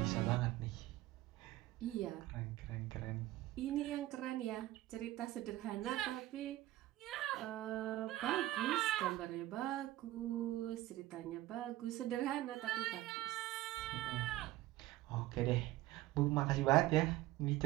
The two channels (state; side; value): quieter; left; 16.2 dB